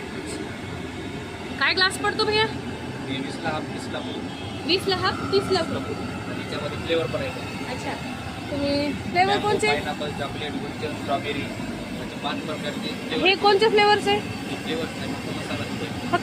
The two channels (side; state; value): both; identical; correlation 1.00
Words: काय ग्लास पडतो भैया? 20ला हाफ 30ला 20ला हाफ 30ला फुल. आणि त्याच्यामध्ये फ्लेवर पण आहे. अच्छा, तुम्ही फ्लेवर कोणचे? पायनॅपल, चॉकलेट, गुलकंद, स्ट्रॉबेरी म्हणजे 5 प्रकारचे हे कोणते फ्लेवर्स आहे? फ्लेवर्स नाही, फक्त मसाला दूध.